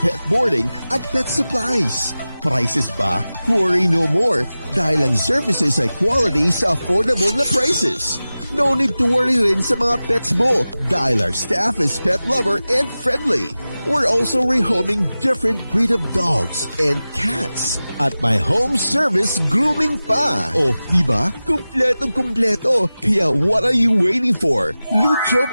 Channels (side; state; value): both; inverted; correlation -0.96